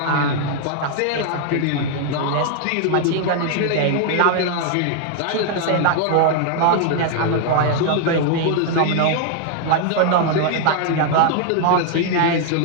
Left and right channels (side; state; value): both; different; correlation 0.00